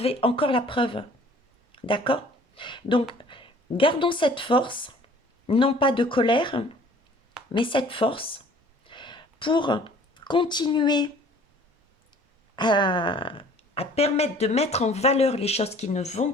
encore la preuve. D'accord? Donc, gardons cette force, non pas de colère, mais cette force pour continuer à, à permettre de mettre en valeur les choses qui ne vont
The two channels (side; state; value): both; normal; correlation 0.52